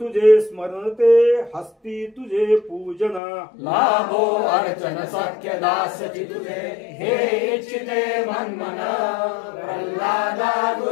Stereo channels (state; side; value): drops out; right; at 3.2 s